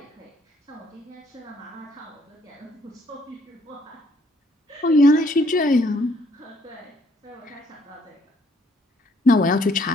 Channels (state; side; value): normal; both; correlation 0.66